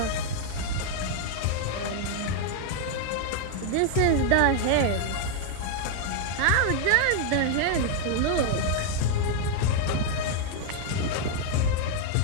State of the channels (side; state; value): both; different; correlation 0.00